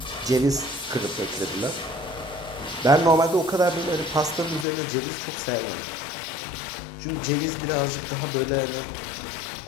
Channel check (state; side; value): drops out; right; at 4.7 s